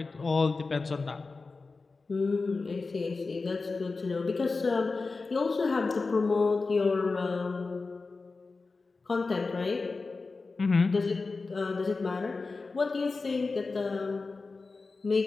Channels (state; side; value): quieter; right; 4.0 dB